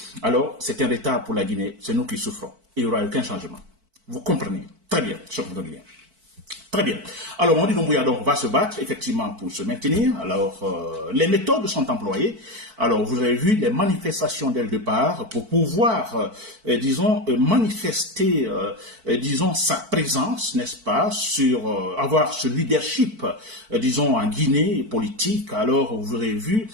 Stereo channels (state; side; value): late; left; 4.5 ms